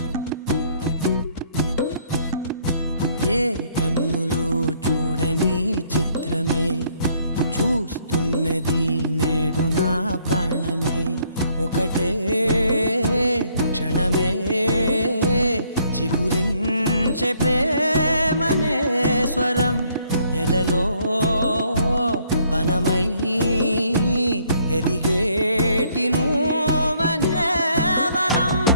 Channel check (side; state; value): both; inverted; correlation -0.67